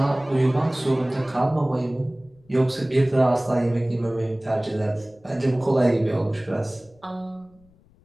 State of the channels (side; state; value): left; noise; rumble, 30 dB below the sound